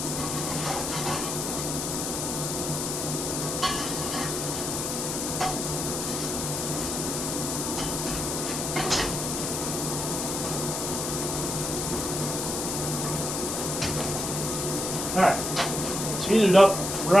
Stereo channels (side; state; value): left; noise; hiss, 2 dB below the sound